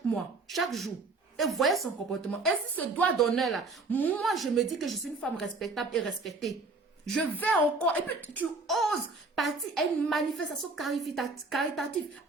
mois, chaque jour. Et voyez son comportement. Et si ce doigt d'honneur là, moi, je me dis que je suis une femme respectable et respectée. Je vais encore, et puis tu oses partir à une manifestation caritative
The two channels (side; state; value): left; quieter; 3.6 dB